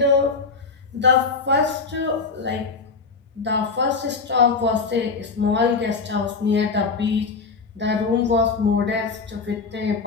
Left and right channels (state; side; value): quieter; right; 4.6 dB